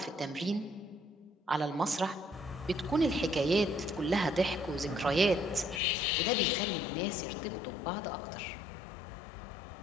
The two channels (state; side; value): drops out; right; at 5.8 s